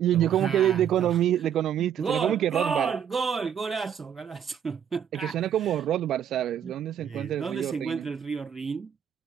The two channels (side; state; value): left; quieter; 9.0 dB